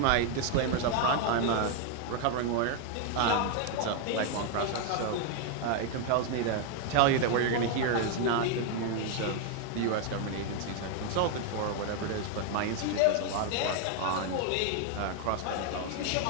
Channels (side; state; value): both; different; correlation 0.00